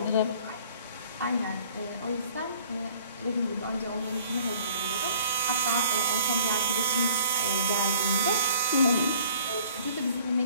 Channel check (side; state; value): both; inverted; correlation -0.55